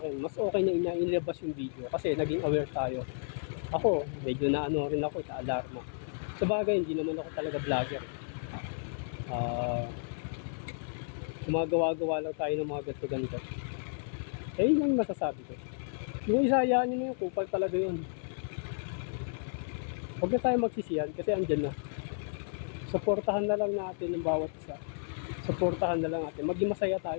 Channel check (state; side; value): silent; right; 56 dB below the other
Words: mas okay na inilabas yung video kasi naging aware tayo. Ako, medyo rin ako, alarma. Sa bagay, hindi naman ako talaga vlogger. Gumagawa-gawa lang tayo ng mga ganito-ganito. Yun ang masasabi ko. Yung isa, hayaan nyo na yung kupal talaga yun. Huwag na tayo magsisiyan kasi andyan na. Suportahan na lang natin ng bawat isa. Suportahan na lang natin. Maging masaya